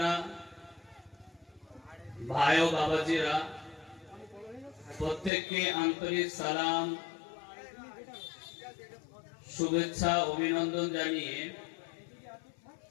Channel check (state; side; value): drops out; right; at 5.3 s